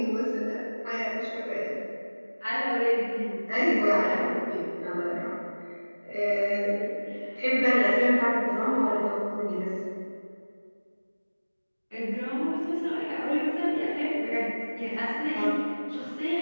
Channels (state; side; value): inverted; both; correlation -1.00